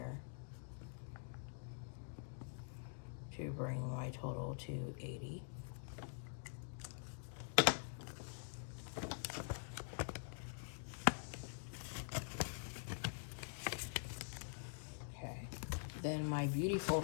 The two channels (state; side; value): silent; right; digital silence